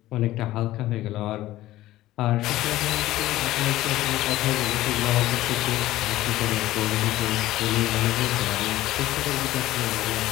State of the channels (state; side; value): quieter; right; 15.7 dB